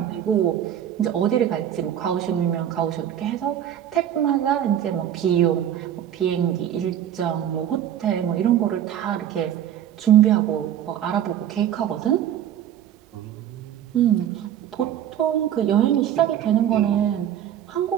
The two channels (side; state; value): left; quieter; 10.4 dB